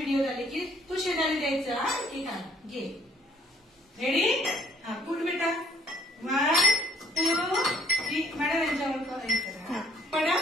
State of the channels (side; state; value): both; normal; correlation 0.61